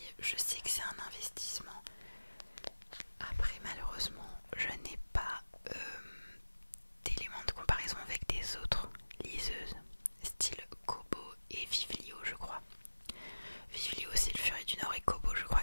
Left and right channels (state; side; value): inverted; both; correlation -1.00